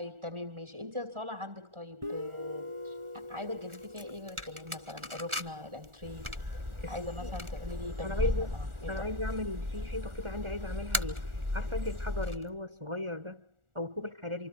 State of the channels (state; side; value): late; left; 1.4 ms